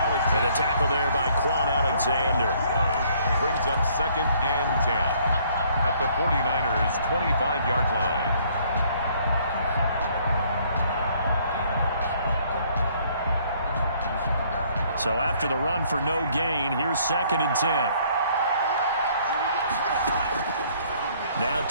And a tackle there by Quan Alexander. Brings up 2nd and 10 at the 49ers' 25-yard line. So after the run for no gain, here's 2nd and 10. Now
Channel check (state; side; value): inverted; both; correlation -0.63